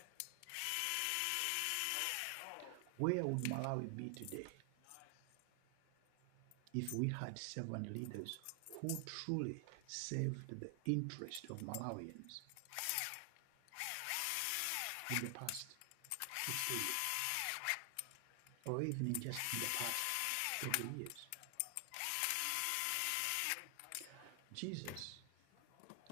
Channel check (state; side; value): different; both; correlation 0.00